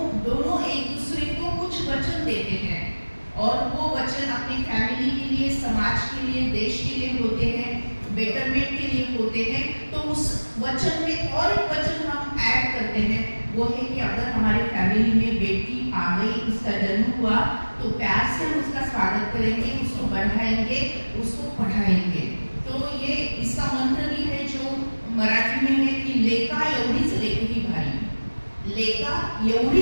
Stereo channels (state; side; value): inverted; both; correlation -1.00